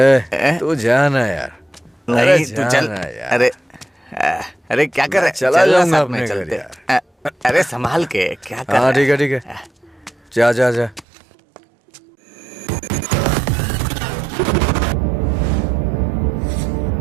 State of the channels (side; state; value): left; drops out; at 11.1 s